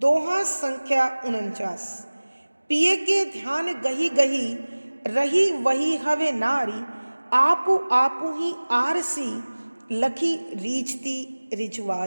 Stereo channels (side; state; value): both; inverted; correlation -1.00